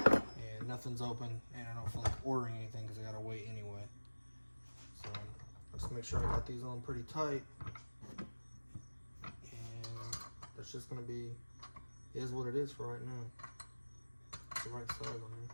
nothing's open, and I don't feel like ordering anything because I gotta wait anyway. So let's make sure I got these on pretty tight. It's just gonna be, is what it is for right now. It's the right size on here.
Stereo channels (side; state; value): both; inverted; correlation -1.00